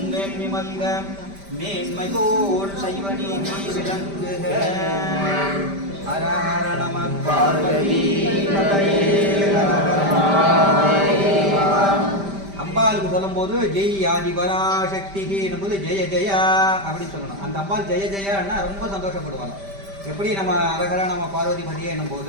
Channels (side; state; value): left; late; 5.1 ms